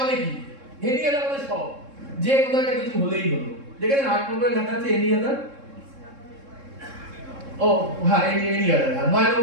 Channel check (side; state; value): left; late; 3.7 ms